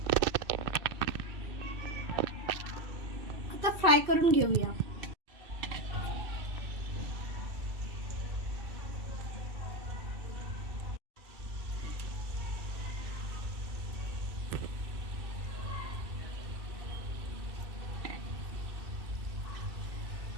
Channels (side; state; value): left; late; 2.7 ms